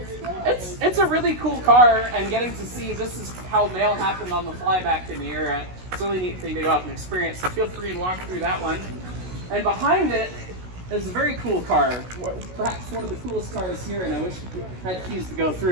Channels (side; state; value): left; late; 16 ms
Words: it's a really cool car, and getting to see this is how mail happened on the fly back in the era. It's a really neat thing to go out and experience. So feel free to walk through that one. And behind it is a very cool car, perhaps one of the coolest cars here, and I wish I had keys to go through